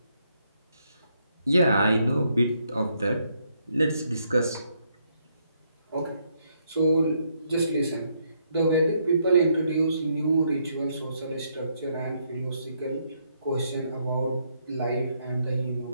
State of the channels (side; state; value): both; inverted; correlation -0.74